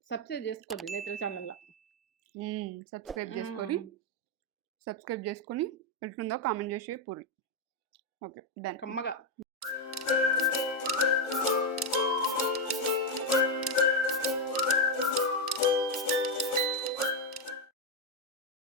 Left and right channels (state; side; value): normal; both; correlation 0.04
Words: సబ్స్క్రైబ్ చేసుకోండి నేత్ర ఛానల్లో. సబ్స్క్రైబ్ చేసుకొని ఎట్లుందో కామెంట్ చేసి పూరి. Okay done. కమ్మగా